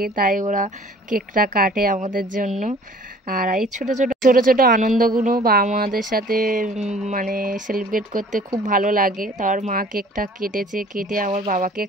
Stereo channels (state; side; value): normal; both; correlation 0.51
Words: তাই ওরা কেকটা কাটে আমাদের জন্য। আর এই ছোট ছোট ছোট ছোট আনন্দগুলো বাবা মাদের সাথে মানে সেলিব্রেট করতে খুব ভালো লাগে। তার মা কেকটা কেটেছে, কেটে আমার বাবাকে